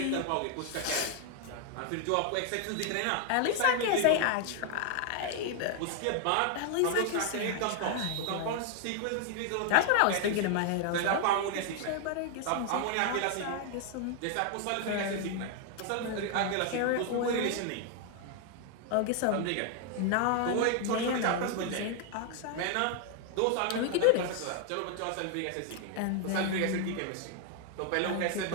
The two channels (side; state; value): both; different; correlation 0.00